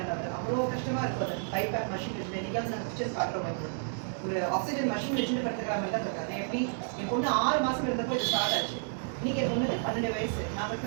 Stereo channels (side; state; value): left; silent; digital silence